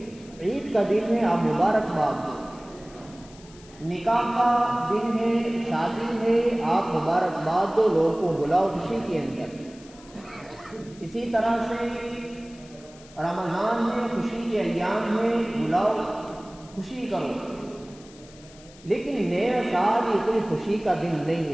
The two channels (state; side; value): noise; left; hiss, 23 dB below the sound